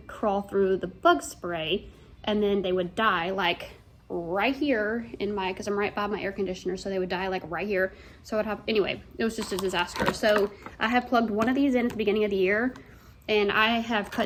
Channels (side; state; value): both; identical; correlation 1.00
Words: crawl through the bug spray, and then they would die like right here in my, because I'm right by my air conditioner, so they would die like right here. So I'd have, anyway, it was just a disaster. So I have plugged one of these in at the beginning of the year, and I have